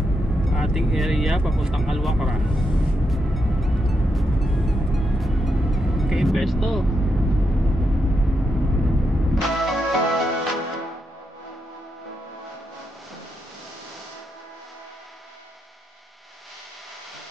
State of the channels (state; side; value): normal; both; correlation 0.83